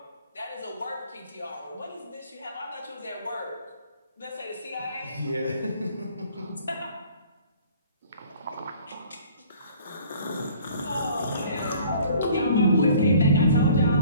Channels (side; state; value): both; inverted; correlation -0.53